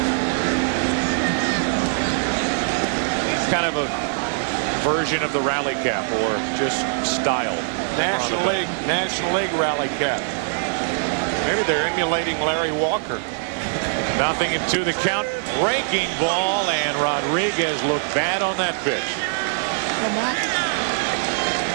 Kind of a version of the rally cap, or just style. National League rally cap. Maybe they're emulating Larry Walker. Nothing into the count. Breaking ball, and Rodriguez looked bad on that pitch.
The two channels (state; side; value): silent; left; digital silence